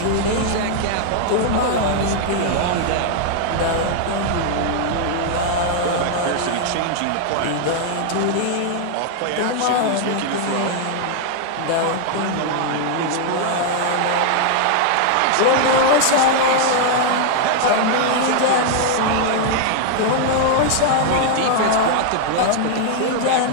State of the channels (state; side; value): different; both; correlation 0.00